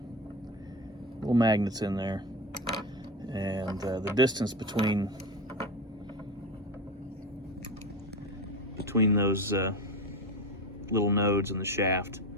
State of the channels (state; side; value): normal; both; correlation 0.22